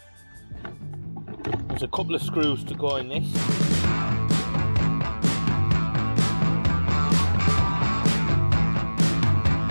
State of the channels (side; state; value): both; inverted; correlation -1.00